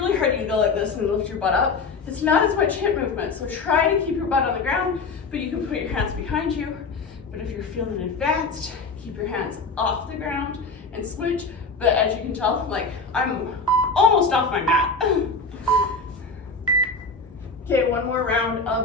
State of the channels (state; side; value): quieter; right; 4.1 dB